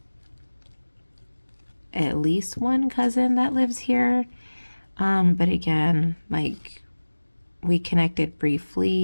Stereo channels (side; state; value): both; inverted; correlation -1.00